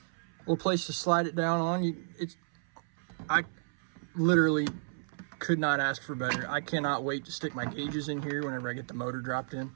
A little place to slide it down on. I literally could not ask for better. I cannot wait to stick my gauges in here whenever I get the motor dropped in.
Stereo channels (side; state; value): left; silent; 56 dB below the other